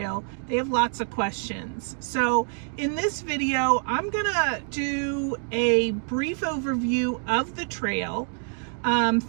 they have lots of questions. So in this video, I'm gonna do a brief overview of the trail,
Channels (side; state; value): left; silent; 58 dB below the other